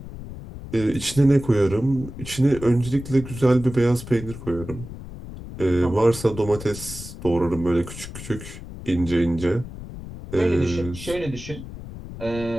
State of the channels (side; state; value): left; noise; rumble, 12 dB below the sound